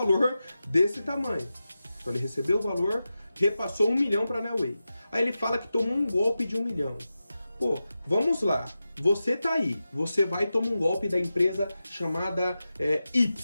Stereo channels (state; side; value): inverted; both; correlation -0.93